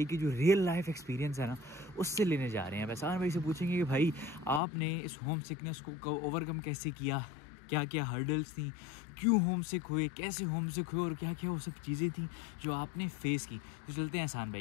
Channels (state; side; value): drops out; right; at 4.6 s